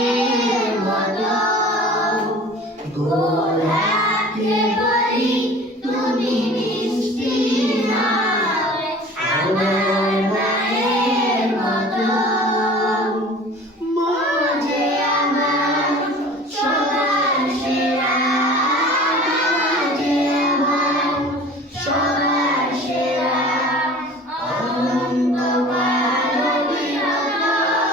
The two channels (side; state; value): both; normal; correlation 0.43